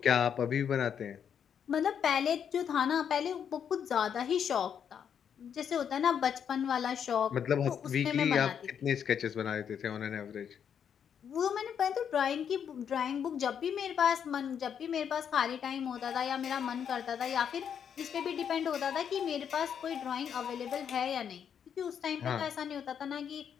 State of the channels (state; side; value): quieter; right; 8.1 dB